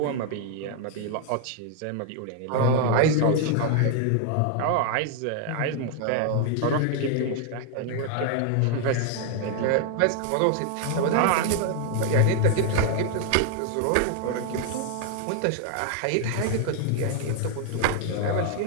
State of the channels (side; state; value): both; different; correlation 0.00